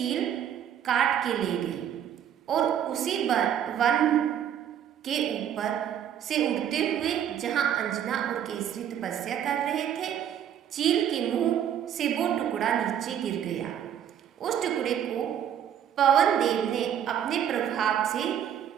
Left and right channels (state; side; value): quieter; left; 9.6 dB